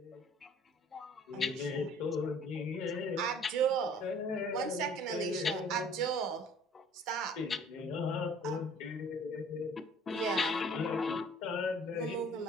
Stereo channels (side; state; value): both; normal; correlation 0.53